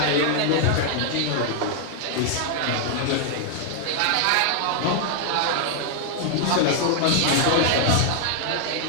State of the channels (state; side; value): different; both; correlation 0.00